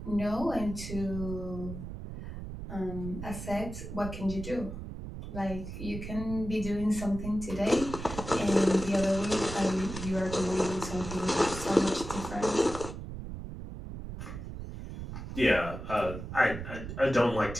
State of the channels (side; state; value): right; noise; rumble, 9 dB below the sound